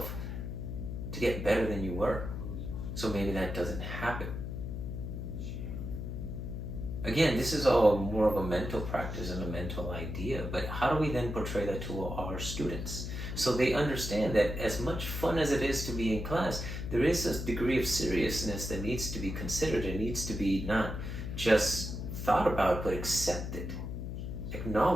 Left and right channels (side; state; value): left; noise; hum, 5 dB below the sound